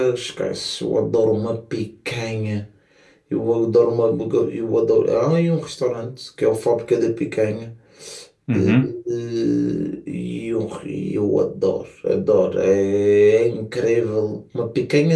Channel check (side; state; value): both; identical; correlation 1.00